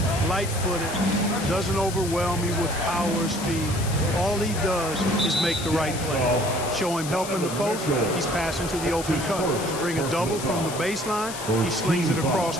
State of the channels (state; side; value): noise; left; hiss, 9 dB below the sound